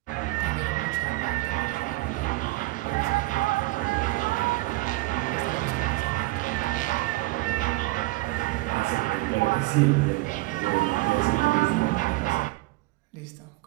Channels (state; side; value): quieter; left; 21.0 dB